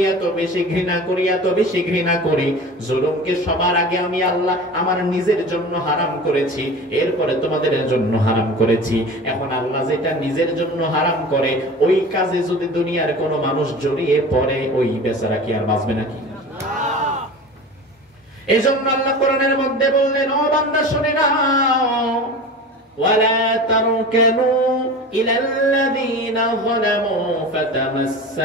এত বেশি ঘৃণা করি, এত বেশি ঘৃণা করি, জুলুমকে সবার আগে আমি আল্লাহ আমার নিজের জন্য হারাম করেছি, এরপরে তোমাদের জন্য হারাম করেছি। এখন আল্লাহ যেটা নিজের জন্য হারাম করে, ওই কাজে যদি দুনিয়ার কোন মানুষ জড়িয়ে পড়ে, ওই বেচারা কি আর বাঁচবে নাকি? এই জন্য আল্লাহ কোরআনের মধ্যে বললেন, ও বান্দা শুনে নাও, ওয়ালা তারকানু ইলাল্লাযীনা যালামু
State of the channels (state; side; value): normal; both; correlation 0.35